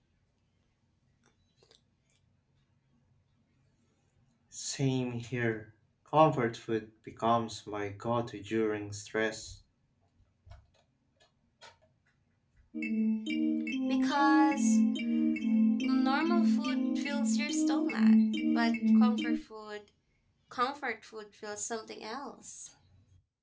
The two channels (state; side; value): identical; both; correlation 1.00